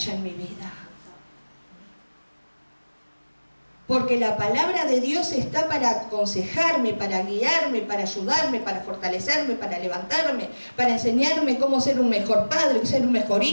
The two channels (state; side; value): inverted; both; correlation -1.00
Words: en mi vida. Porque la palabra de Dios está para aconsejarme, para guiarme, para ayudarme, para fortalecerme, para levantarme, para enseñarme cómo ser un mejor padre, ser un mejor